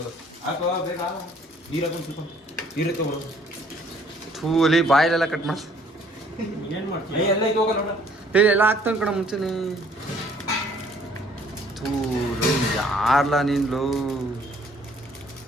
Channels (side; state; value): both; normal; correlation 0.59